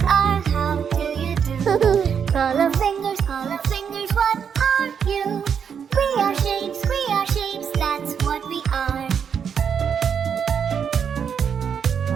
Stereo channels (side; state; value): left; quieter; 7.3 dB